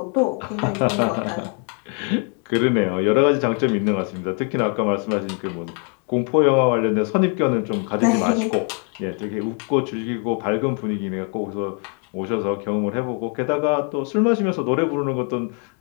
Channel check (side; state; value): right; quieter; 39.7 dB